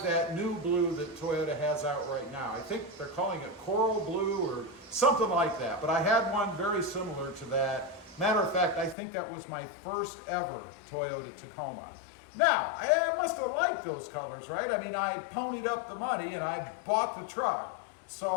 that new blue that Toyota has out right now. I think they're calling it coral blue or something like that. But I had one very similar to that. Matter of fact, I think that was my first ever Toyota Tacoma. Now, I must have liked those colors, right? I mean, I ponied up the money and I bought the truck.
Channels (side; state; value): right; drops out; at 9.0 s